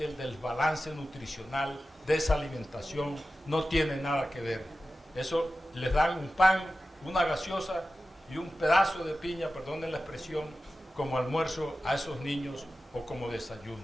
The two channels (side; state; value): both; normal; correlation 0.94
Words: el desbalance nutricional de esa alimentación no tiene nada que ver. Eso les dan un pan, una gaseosa y un pedazo de piña, perdonen la expresión, como almuerzo a esos niños o como desayuno.